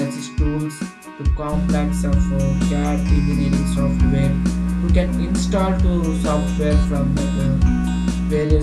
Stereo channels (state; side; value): identical; both; correlation 1.00